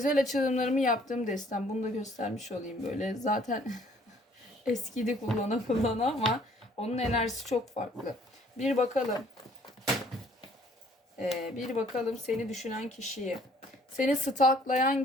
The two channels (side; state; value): both; normal; correlation 0.59